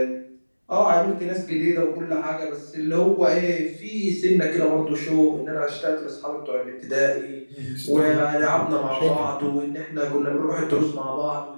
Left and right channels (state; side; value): inverted; both; correlation -1.00